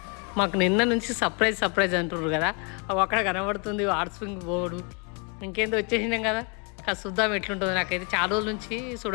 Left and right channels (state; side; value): quieter; right; 34.3 dB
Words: మాకు నిన్న నుంచి సర్ప్రైజ్ అంటున్నారు కదా, అవి అక్కడ కనబడుతుంది హాట్ స్ప్రింగ్ బోర్డు. ఇంకేందో వచ్చేసినాం కదా, కాదు చూద్దాం ఎట్లుంటుందో. నాకైతే చాలా రోజుల నుంచి